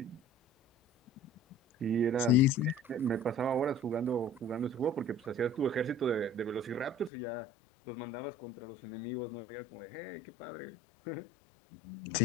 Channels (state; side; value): drops out; right; at 7.1 s